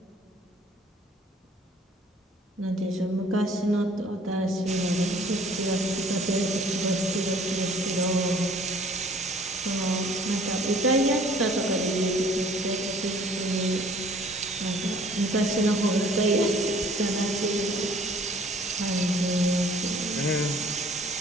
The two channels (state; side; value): normal; both; correlation 0.54